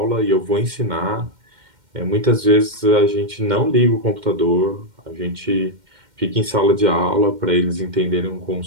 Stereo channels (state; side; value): late; left; 2.1 ms